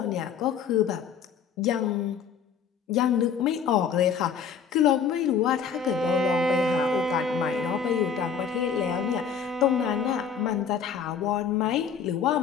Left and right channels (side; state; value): right; quieter; 6.8 dB